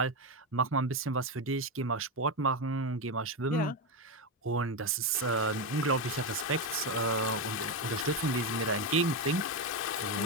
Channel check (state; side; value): normal; both; correlation 0.10